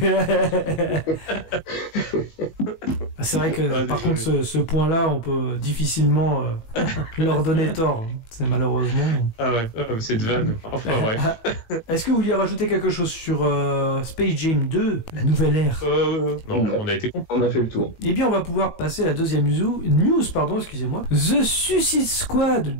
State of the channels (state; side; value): late; right; 18 ms